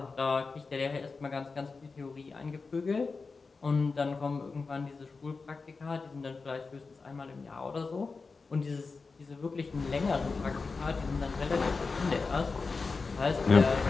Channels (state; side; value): quieter; right; 4.3 dB